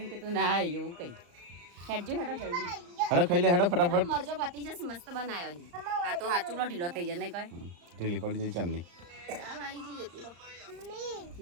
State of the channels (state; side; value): late; left; 35 ms